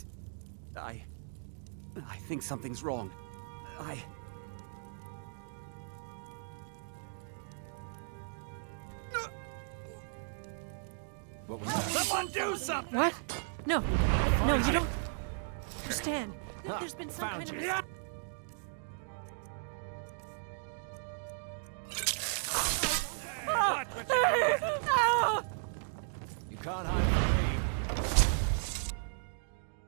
I think something's wrong. What was that? Someone do something! What? No, you don't understand. There's been some kind of... You can't hide from me.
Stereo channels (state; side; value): silent; left; digital silence